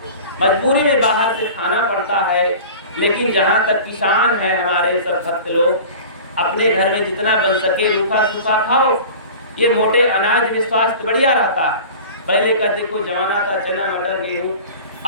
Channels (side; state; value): both; inverted; correlation -0.38